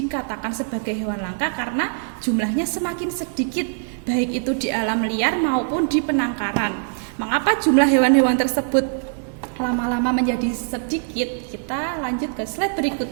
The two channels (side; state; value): left; silent; digital silence